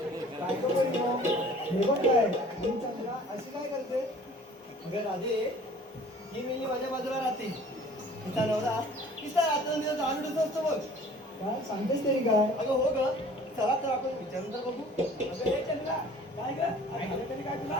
काय गं बरी मग? हे बघ काय आणि चंद्रा अशी काय करते? अगं राधे, ही मेली माझ्या बाजूला राहते. तिचा नवरा तिचा रात्रंदिवस आलूडच असतो बघ. काय सांगतेस तरी काय? अगं हो ग, चला तर आपण विचारून तर बघू. अगं हे चंद्रा, काय ग काय झालं तरी काय तुला?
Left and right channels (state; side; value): normal; both; correlation 0.50